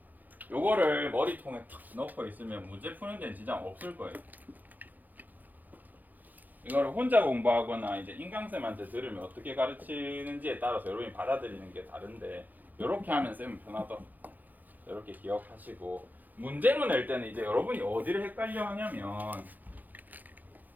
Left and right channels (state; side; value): late; left; 0.084 ms